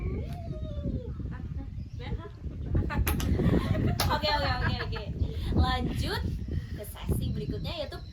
Oke. Lanjut ke sesi berikutnya yaitu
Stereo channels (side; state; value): both; identical; correlation 1.00